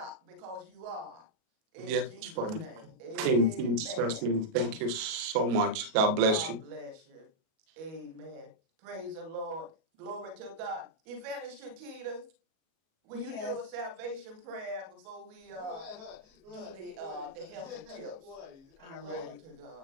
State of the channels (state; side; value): late; left; 38 ms